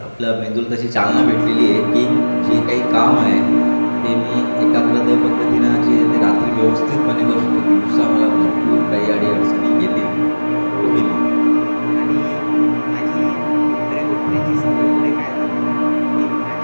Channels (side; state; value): both; inverted; correlation -1.00